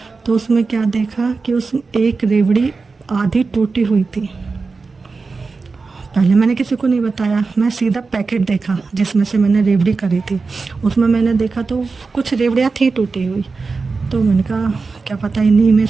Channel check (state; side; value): quieter; left; 4.3 dB